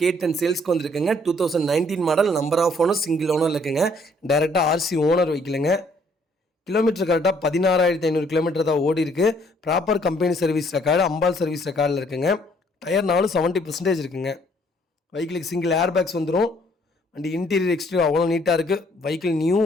சேல்ஸ்க்கு வந்திருக்குங்க. 2019 model. Number of owner single owner இருக்குங்க. டைரெக்டாக ஆர்சி ஓனர் வைக்கலங்க. கிலோமீட்டர் கரெக்டாக 16,500 கிலோமீட்டர் தான் ஓடி இருக்கு. ப்ராப்பர் கம்பெனி சர்வீஸ் ரெக்கார்டு, அம்பால் சர்வீஸ் ரெக்கார்டில் இருக்குங்க. டயர் 70% இருக்குங்க. வெஹிக்கிளுக்கு சிங்கிள் ஏர் பேக்ஸ் வந்துடும். வண்டி இன்டீரியர் எக்ஸ்டீரியர் அவ்வளோ நீட்டாக இருக்குது. வெஹிக்கிள் நியூ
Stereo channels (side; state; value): both; normal; correlation 0.64